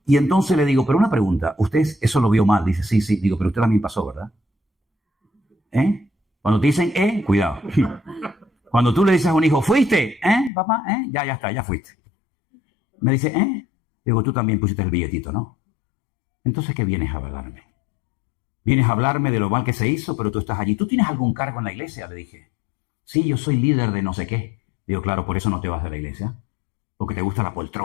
Y entonces le digo, pero una pregunta, usted eso lo vio mal. Dice, sí. Digo, pero usted también pasó, ¿verdad? Cuando te dicen, cuidado. Cuando tú le dices a un hijo, ¿fuiste? Papá, ya está, ya fuiste. Me dice, Digo, tú también pusiste el billetito, ¿no? Entonces, ¿qué vienes a hablarme? Vienes a hablarme de lo mal que se hizo, pero tú estás allí. ¿Tú tienes algún cargo en la iglesia? Le dije. Sí, yo soy líder de no sé qué. Digo, claro, por eso no te vas de la iglesia. Porque te gusta la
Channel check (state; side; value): drops out; right; at 10.5 s